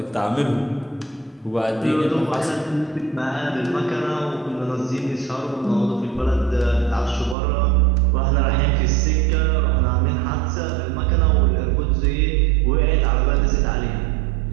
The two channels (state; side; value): drops out; left; at 7.4 s